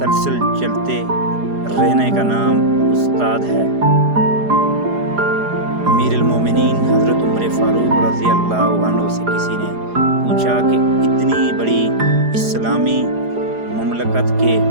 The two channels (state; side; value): late; left; 4.9 ms